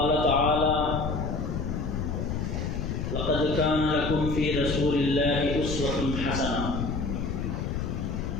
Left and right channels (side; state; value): left; noise; rumble, 2 dB below the sound